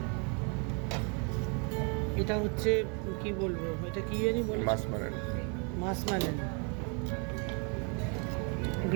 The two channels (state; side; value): quieter; left; 36.1 dB